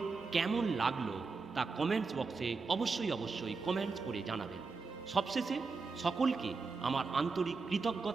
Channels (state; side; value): quieter; left; 4.4 dB